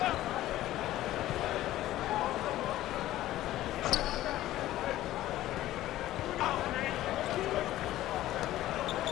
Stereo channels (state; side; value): quieter; right; 14.7 dB